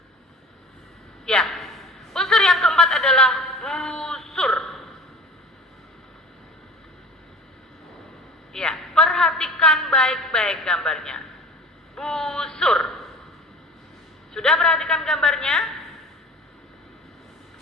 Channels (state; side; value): normal; both; correlation 0.41